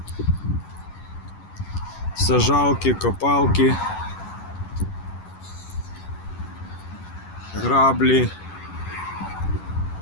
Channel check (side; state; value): right; late; 11 ms